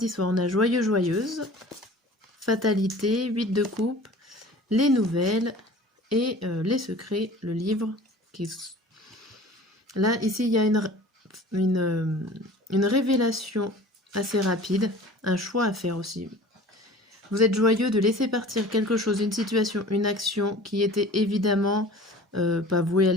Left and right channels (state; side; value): normal; both; correlation 0.43